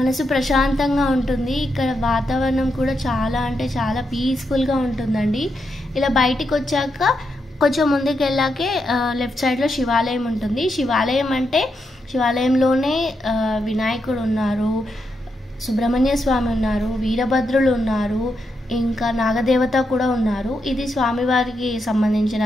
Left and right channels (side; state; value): both; normal; correlation 0.83